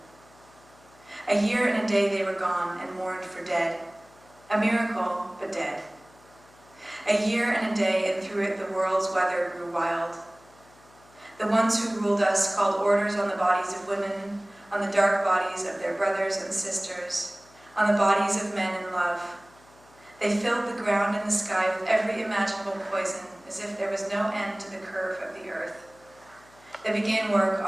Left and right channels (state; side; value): noise; left; hum, 28 dB below the sound